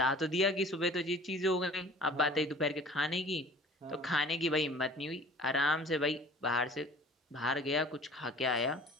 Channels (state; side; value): normal; both; correlation 0.47